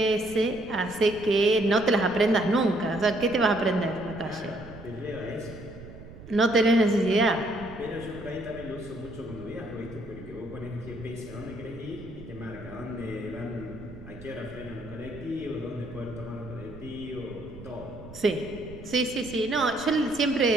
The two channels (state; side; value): noise; right; rumble, 16 dB below the sound